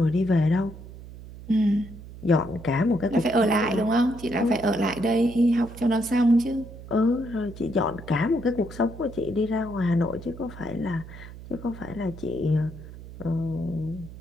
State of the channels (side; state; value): right; noise; hum, 15 dB below the sound